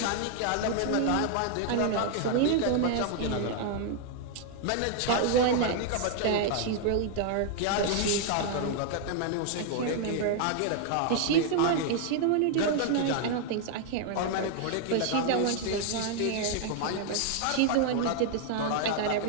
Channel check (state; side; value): different; both; correlation 0.00